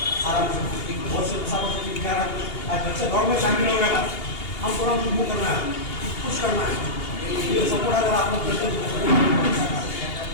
आराम से बहुत से बच्चे दौड़ में शामिल हो गए, हम थोड़ा मूव करना है, कुछ करना है, ये सपोर्ट अगर आप लोग करते हैं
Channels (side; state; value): right; late; 2.8 ms